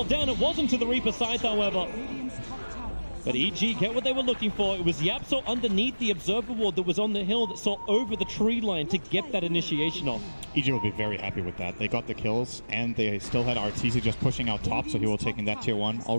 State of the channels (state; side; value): inverted; both; correlation -1.00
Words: down. It wasn't to the Reaper side, however. But EG get what they were looking for. It was Yapso underneath the Observer Ward that was on the hill that saw over the tree line to get that initiation off. EG will be very happy with that. They got the kills, and they still had Arteezy just pushing out top, so he will take in that Tier 1.